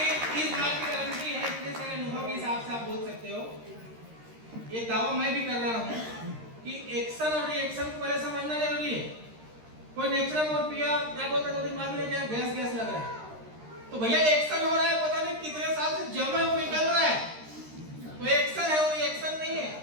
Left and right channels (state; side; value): late; left; 13 ms